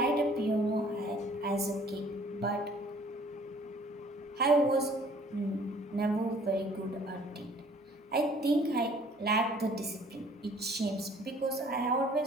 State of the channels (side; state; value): both; normal; correlation 0.55